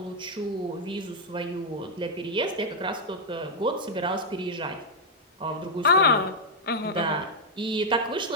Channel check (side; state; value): both; normal; correlation -0.01